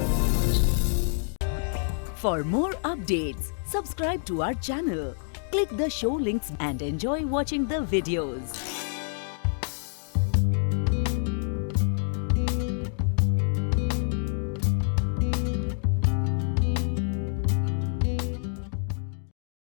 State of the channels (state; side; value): silent; right; digital silence